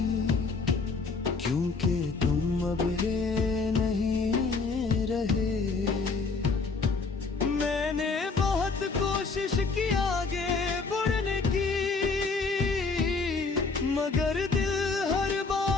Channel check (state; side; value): quieter; right; 4.3 dB